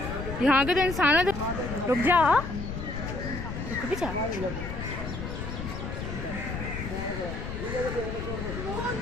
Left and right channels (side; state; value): left; noise; rumble, 6 dB below the sound